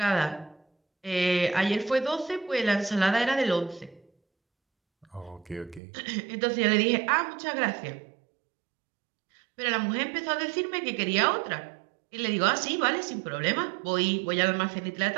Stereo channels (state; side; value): drops out; left; at 5.8 s